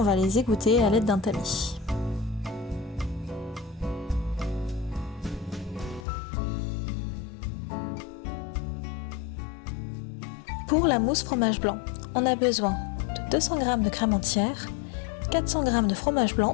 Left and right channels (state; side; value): drops out; right; at 6.1 s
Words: va les égoutter à l'aide d'un tamis. Pour la mousse fromage blanc, on a besoin de 200 g de crème entière, 400 g de fromage